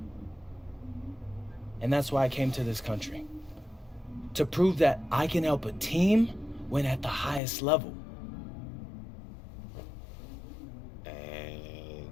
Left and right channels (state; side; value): drops out; right; at 7.4 s